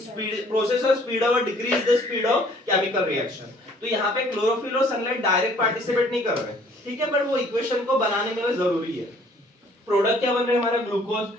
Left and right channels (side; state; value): both; normal; correlation 0.57